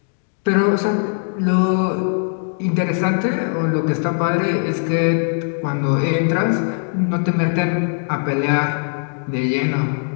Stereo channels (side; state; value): right; silent; 66 dB below the other